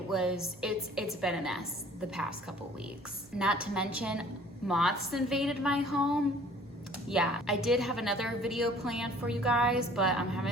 been a mess the past couple weeks. Not to mention, moths invaded my home. Yeah, I did have another video planned for you guys, but I'm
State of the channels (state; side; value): normal; both; correlation 0.52